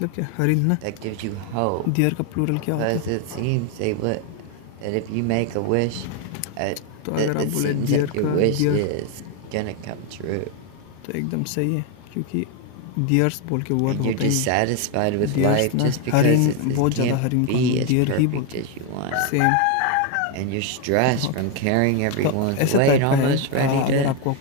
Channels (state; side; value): different; both; correlation 0.01